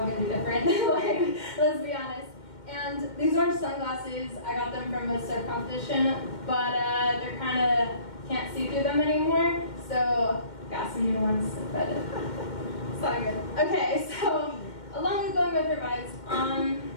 gonna be different. Like, let's be honest. And these orange sunglasses, I got them from a surf competition, but they're kind of, can't see through them anymore, so got some new ones, but it's all good. Okay, so along with going with revised,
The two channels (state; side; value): late; right; 2.1 ms